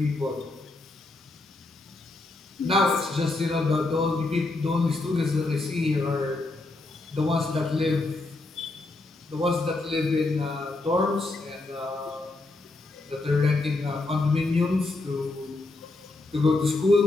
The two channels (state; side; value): quieter; right; 3.1 dB